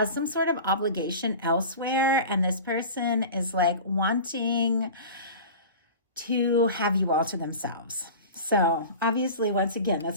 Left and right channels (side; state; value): both; inverted; correlation -0.35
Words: some sort of obligation elsewhere, and this person is like wanting to have you all to themselves. So obviously, once again,